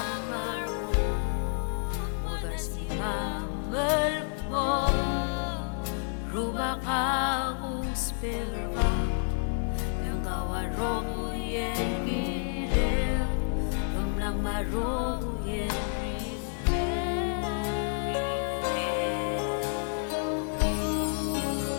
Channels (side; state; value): right; silent; 58 dB below the other